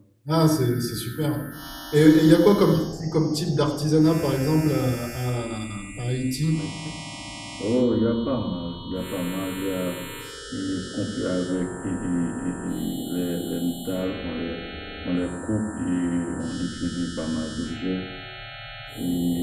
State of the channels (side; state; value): both; identical; correlation 1.00